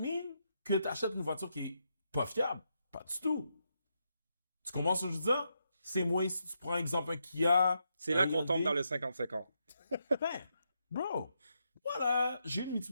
que tu achètes une voiture qui est pas fiable? Pas du tout. Tu comprends ce que je veux dire? C'est moins si tu prends exemple un Kia. C'est là un qu'on tombe Hyundai. dans le 50-50. Ben, bro, voilà, j'ai une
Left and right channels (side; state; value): both; inverted; correlation -0.82